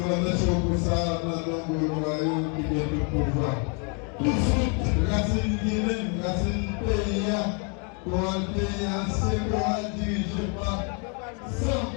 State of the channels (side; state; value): right; quieter; 36.0 dB